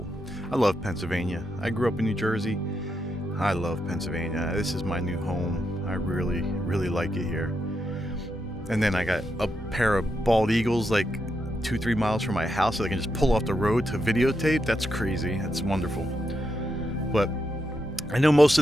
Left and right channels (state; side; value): normal; both; correlation 0.83